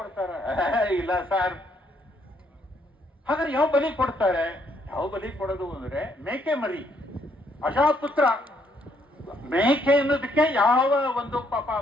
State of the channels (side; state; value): both; normal; correlation 0.71